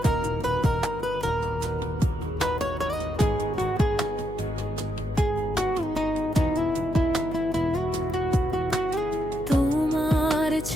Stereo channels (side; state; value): left; noise; hum, 11 dB below the sound